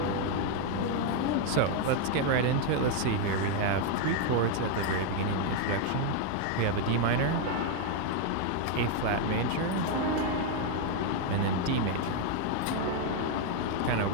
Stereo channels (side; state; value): both; different; correlation 0.01